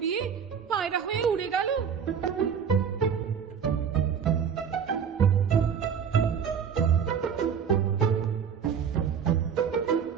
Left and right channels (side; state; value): left; quieter; 7.3 dB